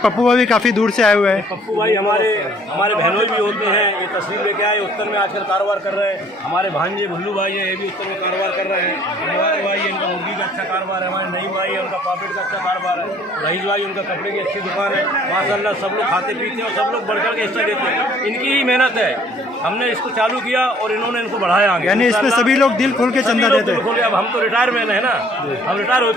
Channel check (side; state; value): both; normal; correlation 0.57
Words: भाई काफ़ी दूर से आए हुए हैं। पप्पू भाई हमारे बहनोई भी होते हैं, ये तस्वीर लेके आए, उत्तर में आजकल कारोबार कर रहे हैं। हमारे भांजे भुल्लू भाई हैं, ये भी उत्तर में कारोबार कर रहे हैं। हमारे भाई इनका मुर्गी का अच्छा कारोबार है, हमारे नईम भाई है उनका पापड़ का अच्छा कारोबार है, रईस भाई उनका कपड़े की अच्छी दुकान है। माशाअल्लाह सब लोग खाते पीते हैं और सब लोग बढ़ चढ़ के हिस्सा देते हैं। इनकी ही मेहनत है, हमने इसको चालू किया और इन्होंने इनको बढ़ाया आगे। यानी इसमें सभी लोग दिल खोल के चंदा देते हैं। अब हम तो रिटायरमेंट है ना, हम रिटायर हो